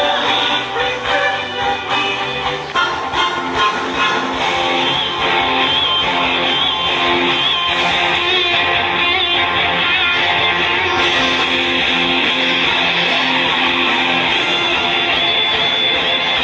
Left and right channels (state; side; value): identical; both; correlation 1.00